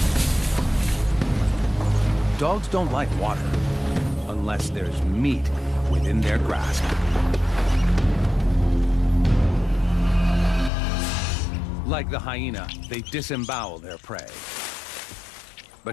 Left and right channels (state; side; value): drops out; right; at 10.7 s